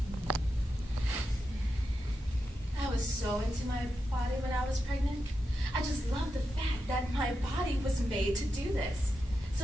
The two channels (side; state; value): both; normal; correlation 0.88